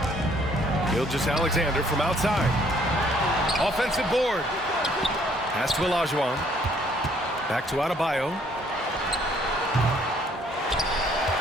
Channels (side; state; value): both; normal; correlation 0.63